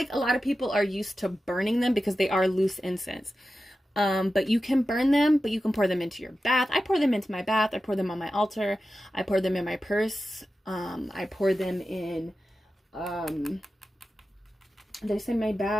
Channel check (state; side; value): normal; both; correlation 0.92